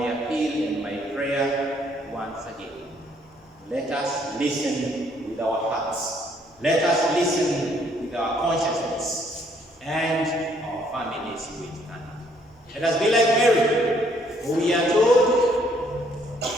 and my prayer once again, let us listen with our hearts. Let us listen with our consciousness, and our families will stand. Let us be like Mary, who we are told,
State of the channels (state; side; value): normal; both; correlation 0.66